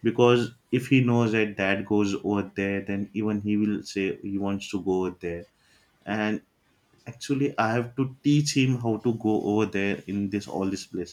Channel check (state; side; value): identical; both; correlation 1.00